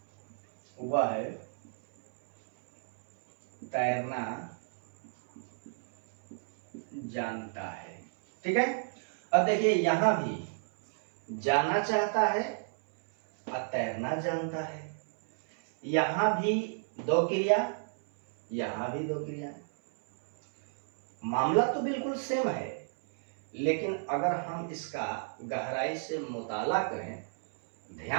वह है तैरना जानता है। ठीक है, अब देखिए यहां भी जाना चाहता है और तैरना जानता है, यहां भी दो क्रिया, यहां भी दो क्रिया। मामला तो बिल्कुल सेम है, लेकिन अगर हम इसका गहराई से मुताला करें,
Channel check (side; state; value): left; silent; 57 dB below the other